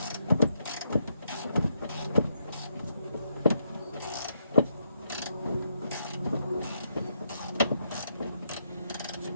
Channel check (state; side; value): inverted; both; correlation -0.78